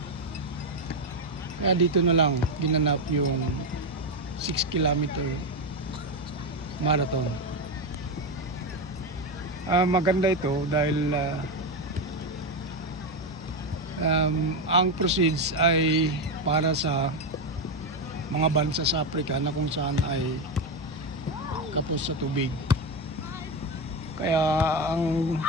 Kaya dito na lang ginanap yung 6 kilometer marathon. Maganda ito dahil ang proceeds ay para sa mga bansa sa Africa na kung saan ay kapos sa tubig. Kaya ang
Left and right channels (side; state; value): both; normal; correlation 0.11